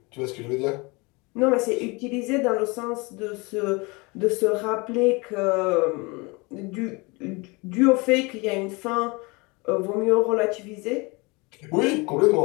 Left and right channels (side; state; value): right; quieter; 27.0 dB